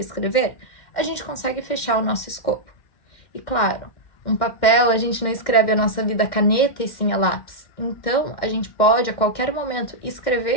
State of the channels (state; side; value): late; right; 2.1 ms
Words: a gente consegue fechar o nosso escopo. E claro, um papel, a gente não escreve a nossa vida a caneta e sim a lápis. Então, a gente pode, a qualquer momento,